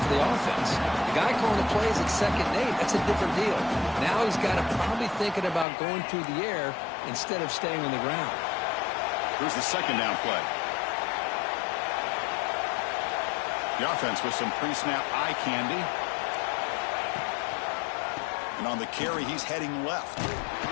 for the offense. The guy calling the plays at 2nd and 8, that's a different deal. Now he's got to probably thinking about going through the air instead of staying on the ground. Here's the second down play. The offense with some pre-snap eye candy. And on the carry, he's heading left.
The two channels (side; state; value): right; drops out; at 5.7 s